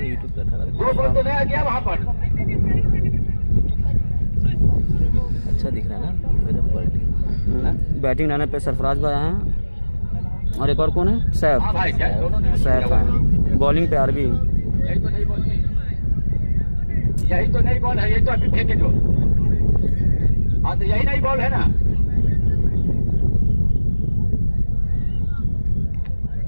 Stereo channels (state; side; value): inverted; both; correlation -1.00